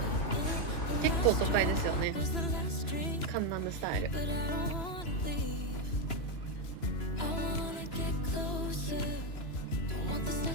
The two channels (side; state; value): right; late; 2.9 ms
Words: 結構都会ですよね。カンナムスタイル。